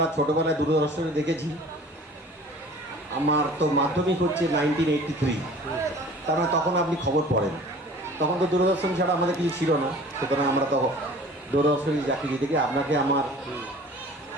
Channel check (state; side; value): normal; both; correlation 0.46